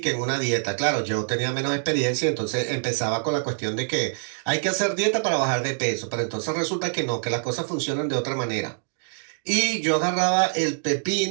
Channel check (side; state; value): left; silent; digital silence